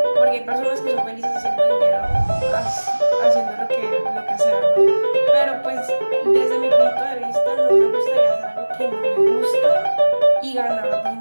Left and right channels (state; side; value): inverted; both; correlation -1.00